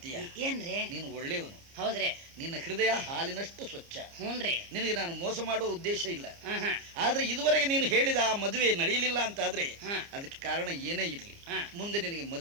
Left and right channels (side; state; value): left; late; 29 ms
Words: ಏನ್ರಿ? ನೀನು ಒಳ್ಳೆಯವನು. ಹೌದ್ರಿ. ನಿನ್ನ ಹೃದಯ ಹಾಲಿನಷ್ಟು ಸ್ವಚ್ಛ. ಹ್ಞೂನ್ರಿ. ನಿನಗೆ ನಾನು ಮೋಸ ಮಾಡುವ ಉದ್ದೇಶ ಇಲ್ಲ. ಹಾ ಹಾ ಆದ್ರೆ ಇದುವರೆಗೆ ನೀನು ಹೇಳಿದ ಆ ಮದುವೆ ನಡೆಯಲಿಲ್ಲ ಅಂತ ಆದ್ರೆ ಹಾ. ಅದಕ್ಕೆ ಕಾರಣ ಏನೇ ಇರ್ಲಿ, ಹಾ. ಮುಂದೆ ನಿನಗೆ